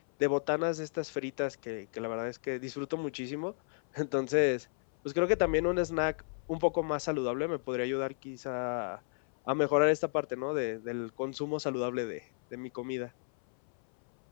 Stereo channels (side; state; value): right; silent; 56 dB below the other